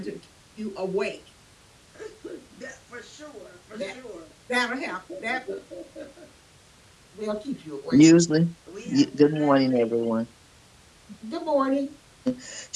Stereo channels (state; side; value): identical; both; correlation 1.00